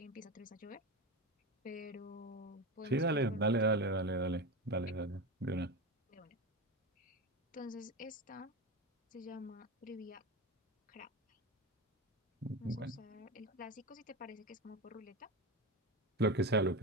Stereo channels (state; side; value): normal; both; correlation 0.21